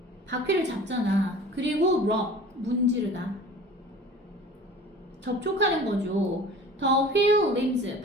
바퀴를 잡잖아. 그리고 rope, 문지르다. 접촉하는 거죠. The wheel limbs,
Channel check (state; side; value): normal; both; correlation 0.42